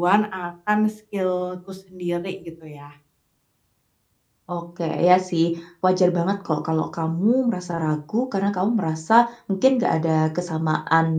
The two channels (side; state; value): both; identical; correlation 1.00